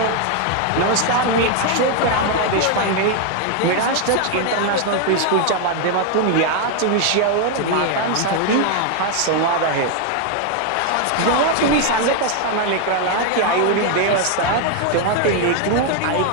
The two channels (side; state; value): both; different; correlation 0.01